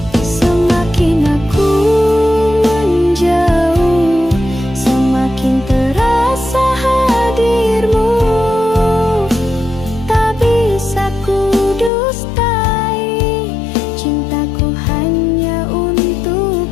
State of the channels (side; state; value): right; drops out; at 11.9 s